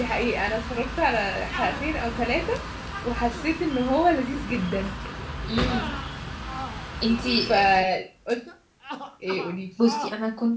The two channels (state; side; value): identical; both; correlation 1.00